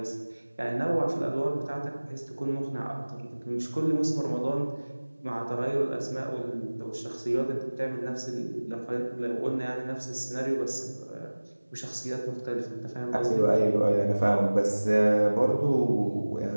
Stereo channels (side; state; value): both; inverted; correlation -1.00